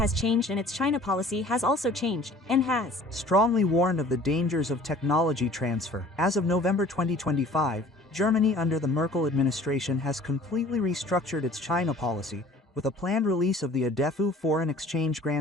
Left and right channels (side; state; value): both; normal; correlation 0.50